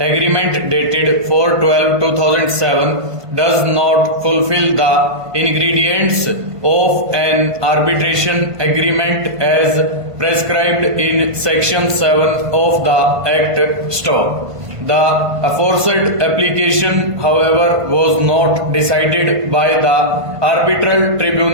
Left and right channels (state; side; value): late; left; 1.5 ms